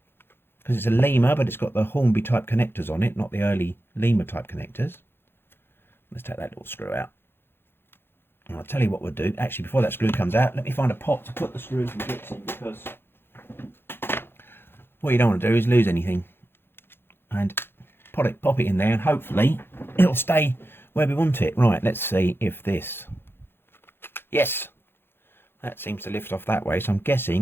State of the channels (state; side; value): late; right; 0.11 ms